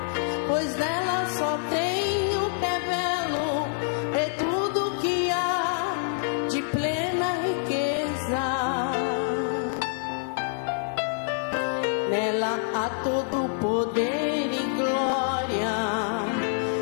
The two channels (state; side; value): silent; right; digital silence